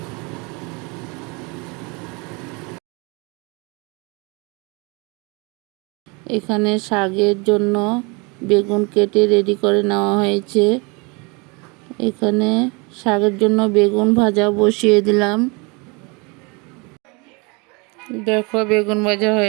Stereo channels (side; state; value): left; quieter; 29.3 dB